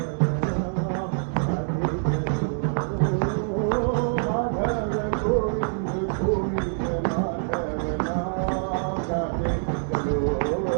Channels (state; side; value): silent; left; digital silence